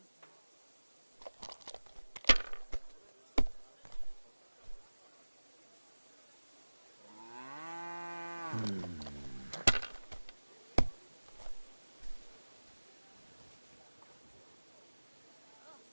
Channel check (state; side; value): inverted; both; correlation -1.00